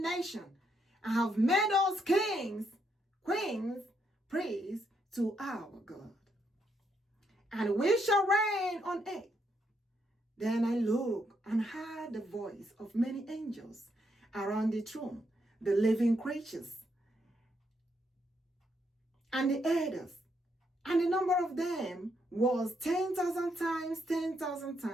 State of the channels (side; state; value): both; normal; correlation 0.76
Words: nation, and have made us kings, queens, priests to our God. And we shall reign on earth. Then I looked and heard the voice of many angels around the throne, the living creatures, and the elders. And the number of them was 10,000 times 10,000